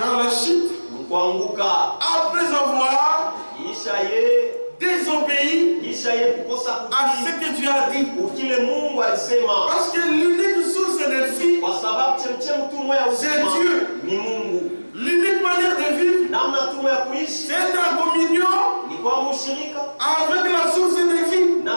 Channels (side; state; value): both; inverted; correlation -1.00